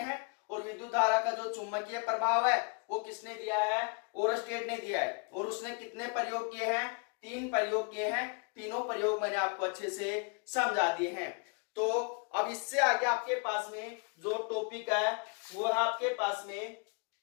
और विद्युत धारा का जो चुंबकीय प्रभाव है वो किसने दिया है, ओरस्टेड ने दिया है। और उसने कितने प्रयोग किए हैं, 3 प्रयोग किए हैं। तीनों प्रयोग मैंने आपको अच्छे से समझा दिए हैं। तो अब इससे आगे आपके पास में जो टॉपिक है वो है आपके पास में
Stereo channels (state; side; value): quieter; right; 36.5 dB